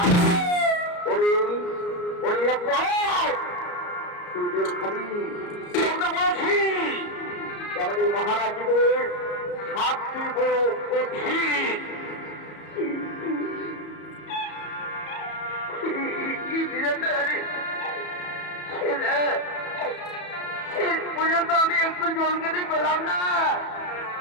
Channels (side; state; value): right; late; 34 ms